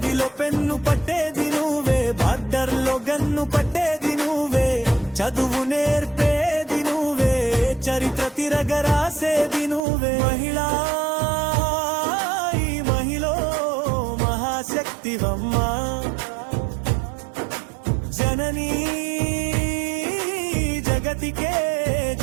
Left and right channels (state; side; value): drops out; left; at 9.8 s